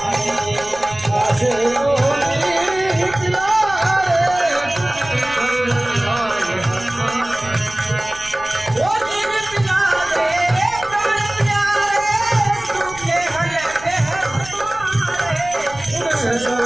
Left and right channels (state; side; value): noise; right; rumble, 18 dB below the sound